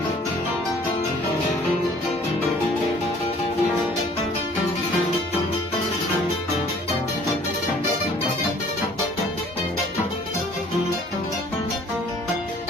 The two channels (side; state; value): both; normal; correlation 0.55